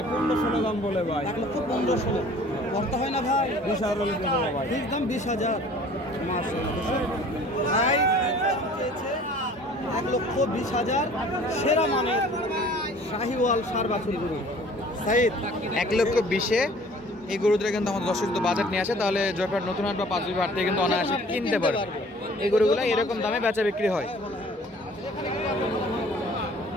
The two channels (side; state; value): both; normal; correlation 0.50